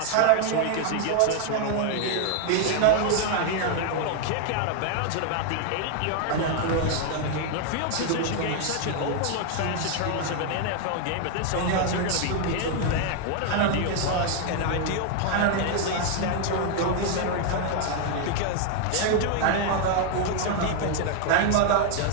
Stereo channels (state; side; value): different; both; correlation 0.00